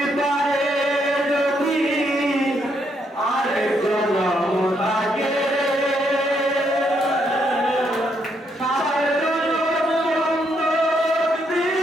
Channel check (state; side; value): normal; both; correlation 0.75